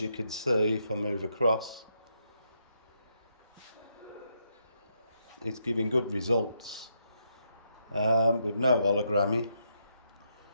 you can see, if I move across, it's giving good results with no hologramming,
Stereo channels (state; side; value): inverted; both; correlation -0.78